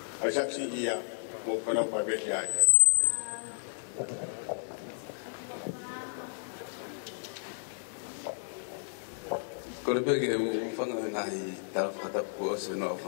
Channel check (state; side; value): silent; right; digital silence